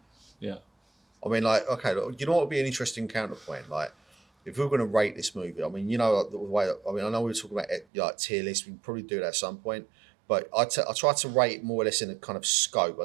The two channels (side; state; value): left; drops out; at 7.9 s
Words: Yeah. I mean, like, okay, look, you know what would be an interesting counterpoint? Like, if we were going to rate this movie, I mean, you know, the way, I mean, I know we were talking about like tier lists, we can probably do that at some point, but I try to rate more or less in a kind of scope.